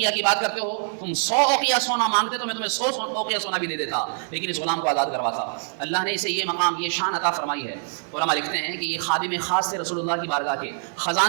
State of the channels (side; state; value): left; silent; digital silence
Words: کی بات کرتے ہو، تم 100 اوقیہ سونا مانگتے تو میں تمہیں 100 اوقیہ سونا بھی دے دیتا، لیکن اس غلام کو آزاد کرواتا. اللہ نے اسے یہ مقام، یہ شان عطا فرمائی ہے. علماء لکھتے ہیں کہ یہ خادم خاص تھے رسول اللہ کی بارگاہ کے،